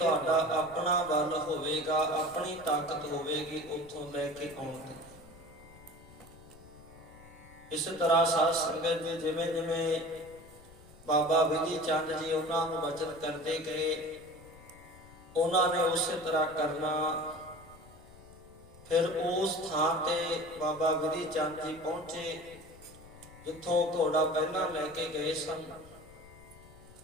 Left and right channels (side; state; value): left; noise; rumble, 22 dB below the sound